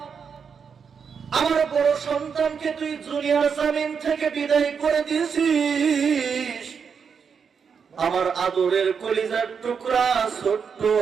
আমার বড় সন্তানকে তুই দুনিয়ার জমিন থেকে বিদায় করে দিয়েছিস। আমার আদরের কলিজার টুকরা ছোট্ট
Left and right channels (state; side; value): quieter; left; 6.4 dB